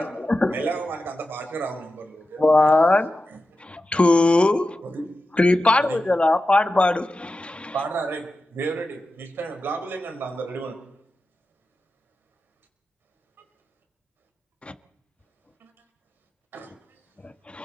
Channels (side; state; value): both; normal; correlation 0.92